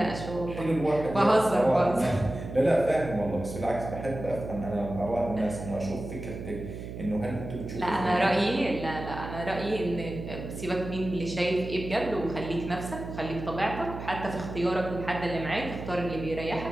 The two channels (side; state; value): right; noise; hum, 9 dB below the sound